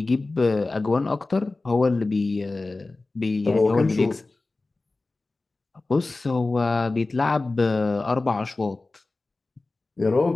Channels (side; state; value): right; quieter; 3.3 dB